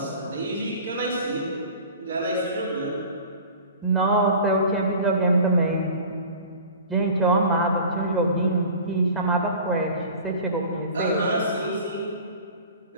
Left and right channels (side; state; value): both; inverted; correlation -0.40